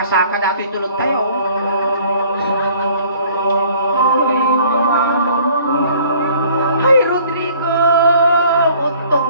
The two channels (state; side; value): inverted; both; correlation -0.55